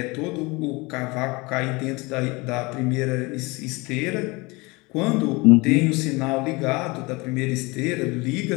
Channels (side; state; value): right; quieter; 25.1 dB